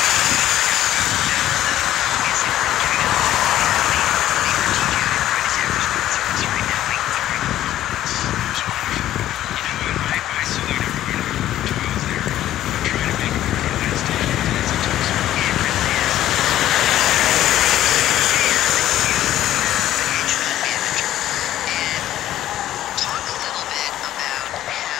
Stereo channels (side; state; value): right; quieter; 12.9 dB